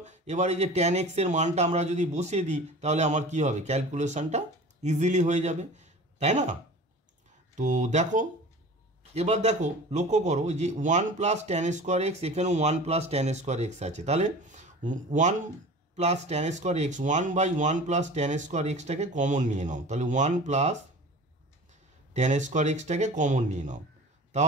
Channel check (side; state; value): both; normal; correlation 0.39